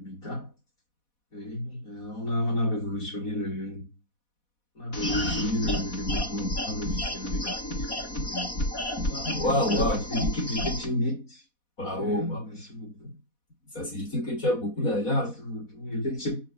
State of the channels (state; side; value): late; right; 4.1 ms